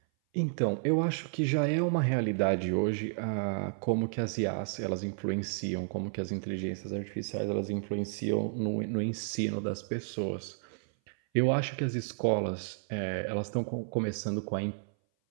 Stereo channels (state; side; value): silent; left; 57 dB below the other